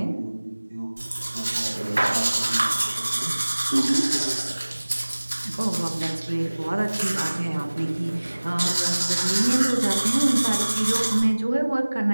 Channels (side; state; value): both; inverted; correlation -1.00